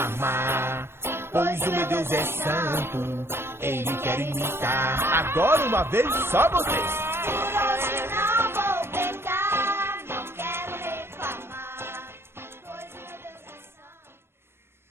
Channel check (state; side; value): late; left; 0.12 ms